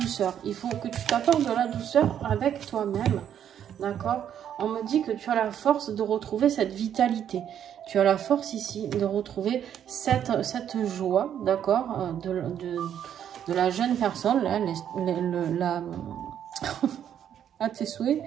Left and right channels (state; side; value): quieter; left; 9.6 dB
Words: Il faut que tu t'apportes de la douceur avec toi-même. D'accord? On me dit que tu as la force de retrouver cette vitalité. Tu as la force ici de retrouver cette joie, d'accord, de la jeune personne, là, à tes souhaits,